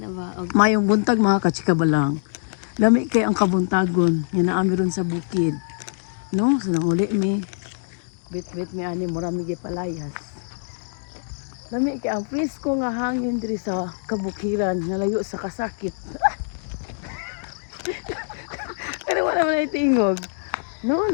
ba? Mayong buntag mga kachikabalang. Lami kay ang kabuntagon. Yan na ron sa bukid. No? So nanguli mi. Bit-bit mi ani murami palayas. Lami kay ang presko nga hangin diri sa kabukiran. Nalayo sa kasakit. Pero wala man ay tingog. No,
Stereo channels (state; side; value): silent; right; digital silence